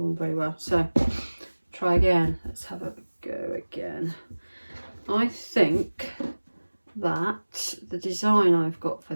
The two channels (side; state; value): both; inverted; correlation -1.00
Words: on very well, so try again. Let's have a go again. I think that the design I've got for